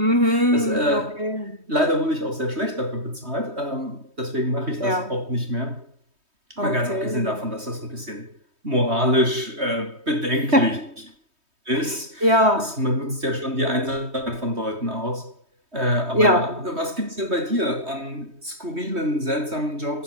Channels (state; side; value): late; left; 3.2 ms